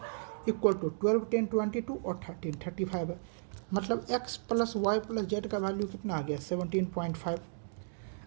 इक्वल टू 12 10 22 और 13 35 है। मतलब x plus Y plus Z का वैल्यू कितना आ गया, 17.5।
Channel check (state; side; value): silent; left; digital silence